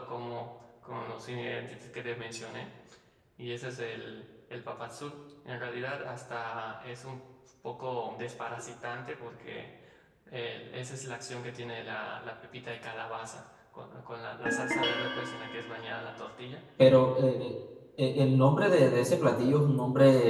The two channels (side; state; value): both; identical; correlation 1.00